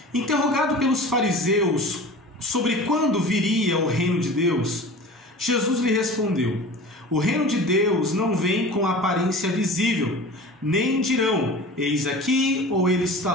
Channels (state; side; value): normal; both; correlation 0.38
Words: Interrogado pelos fariseus sobre quando viria o reino de Deus, Jesus lhe respondeu: o reino de Deus não vem com aparência visível, nem dirão, eis aqui ou ele está